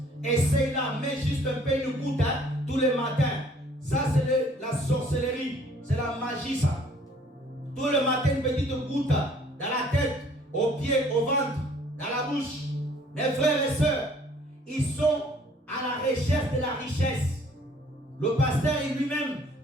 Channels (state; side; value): normal; both; correlation 0.58